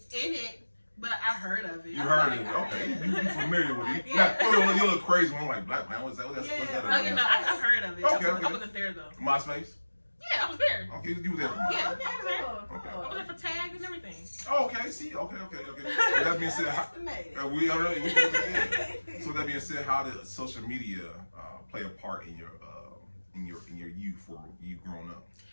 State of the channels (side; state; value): both; inverted; correlation -1.00